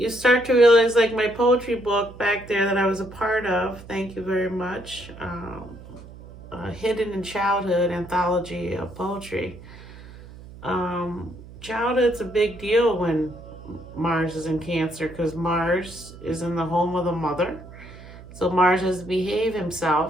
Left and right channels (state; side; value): noise; right; hum, 17 dB below the sound